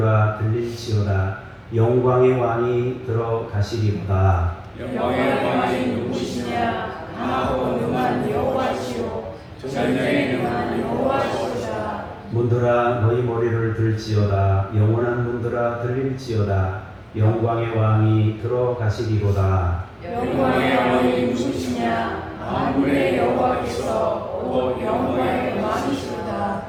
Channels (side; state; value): both; identical; correlation 1.00